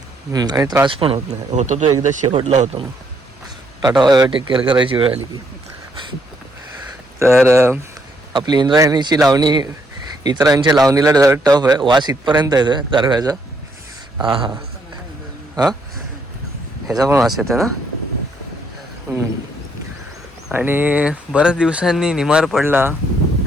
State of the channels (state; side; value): normal; both; correlation 0.72